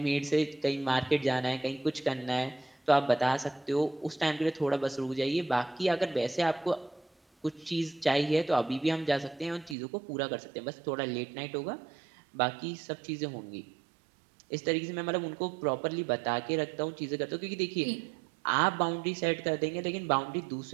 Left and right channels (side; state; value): left; drops out; at 9.8 s